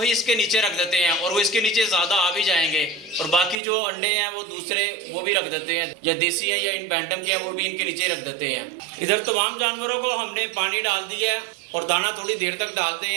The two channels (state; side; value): drops out; left; at 3.6 s